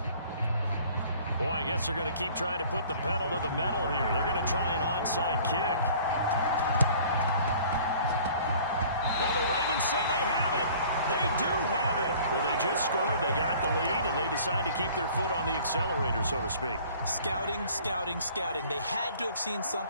Boy, I guess they're going to keep trying to put the pedal to the metal here. They're going to try an onside kick. Well, the Ravens say they have it. They do have it. Well, they just scored. They got the lead, and they decide to keep their foot on the accelerator, so to speak. Scouting, scouting, scouting. They had to have seen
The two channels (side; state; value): both; inverted; correlation -0.51